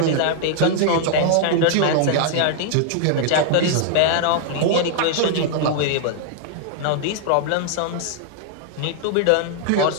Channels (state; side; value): different; both; correlation -0.01